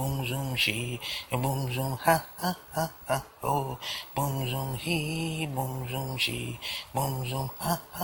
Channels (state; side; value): identical; both; correlation 1.00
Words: zoom she boom zoom ha ha ha ha oh boom zoom he boom zoom she boom zoom ha